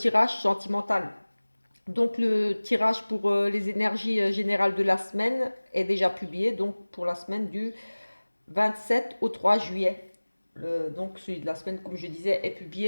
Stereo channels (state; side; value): inverted; both; correlation -1.00